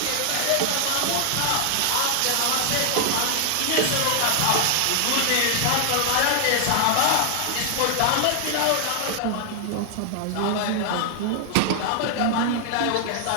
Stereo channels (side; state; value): both; different; correlation -0.01